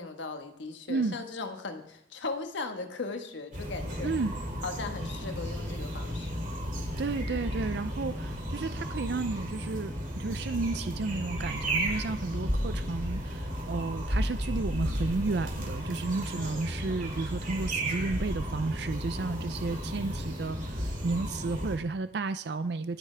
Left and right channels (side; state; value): both; normal; correlation 0.62